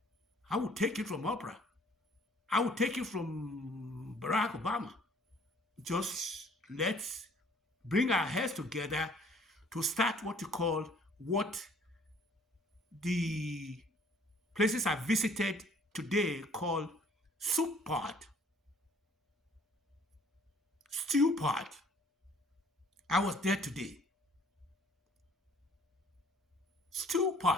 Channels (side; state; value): both; normal; correlation 0.57